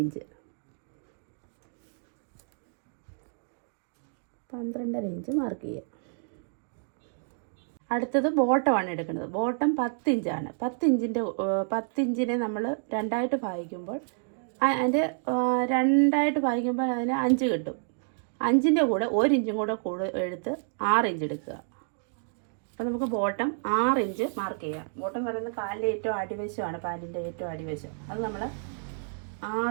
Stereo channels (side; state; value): left; silent; digital silence